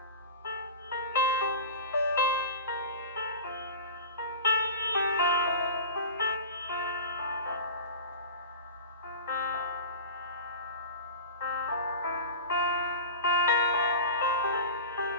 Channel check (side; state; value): both; inverted; correlation -0.32